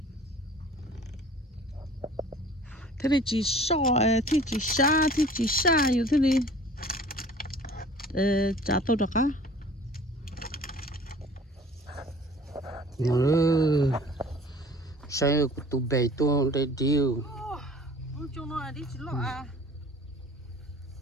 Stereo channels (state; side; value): normal; both; correlation 0.47